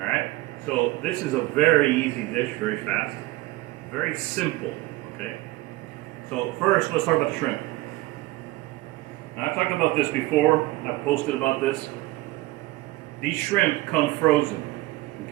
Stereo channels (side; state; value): left; quieter; 18.9 dB